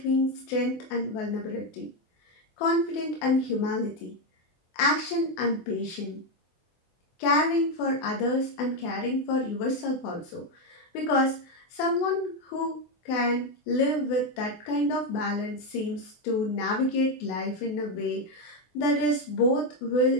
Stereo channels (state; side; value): late; right; 24 ms